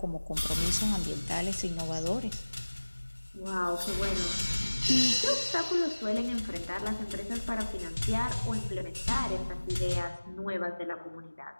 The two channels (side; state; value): both; inverted; correlation -1.00